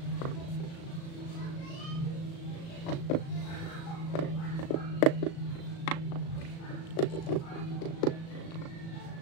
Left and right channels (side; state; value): right; late; 36 ms